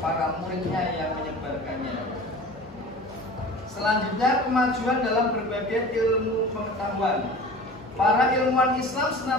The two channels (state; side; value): normal; both; correlation 0.39